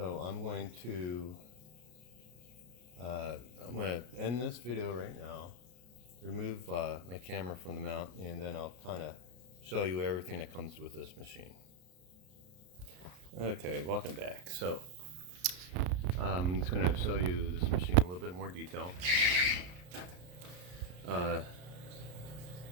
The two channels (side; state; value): left; late; 33 ms